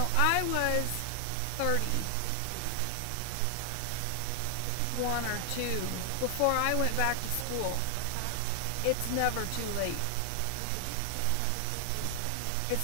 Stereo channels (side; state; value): both; different; correlation 0.00